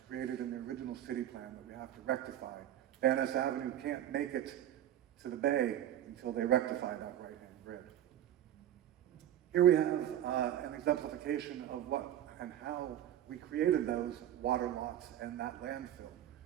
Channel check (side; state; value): left; quieter; 11.6 dB